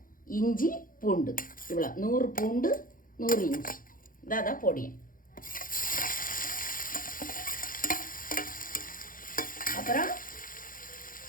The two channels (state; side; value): late; right; 0.40 ms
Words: இஞ்சி பூண்டு இவ்வளோ 100 பூண்டு 100 இஞ்சி இதான் பொடியும். அப்புறம்